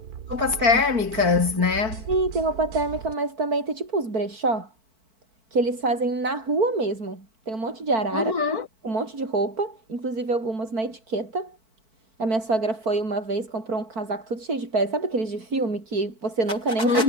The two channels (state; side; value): late; left; 4.5 ms